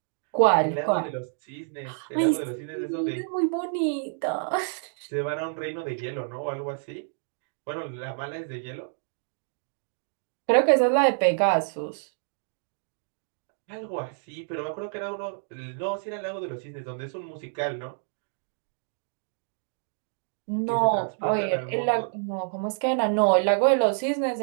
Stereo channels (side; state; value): left; silent; digital silence